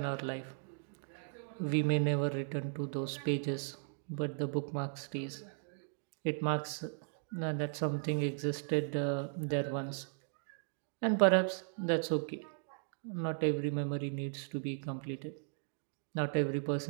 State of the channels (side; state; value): left; silent; digital silence